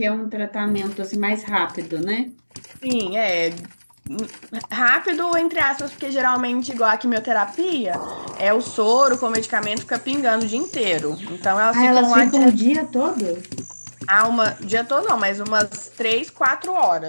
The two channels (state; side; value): inverted; both; correlation -1.00